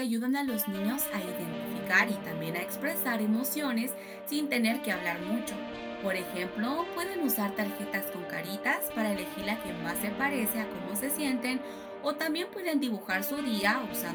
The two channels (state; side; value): identical; both; correlation 1.00